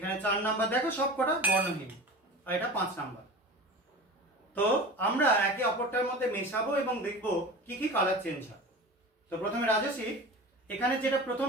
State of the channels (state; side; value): normal; both; correlation 0.34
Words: 4 নাম্বার, দেখো সব কটা বর্ণহীন, আর এটা 5 নাম্বার। তো আমরা একে অপরটার মধ্যে মেশাবো এবং দেখবো কি কি কালার চেঞ্জ হয়। তো প্রথমে রাজস্বী, এখানে যেটা প্রথম